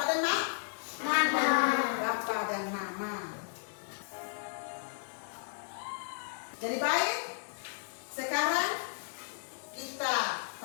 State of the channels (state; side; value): silent; right; 55 dB below the other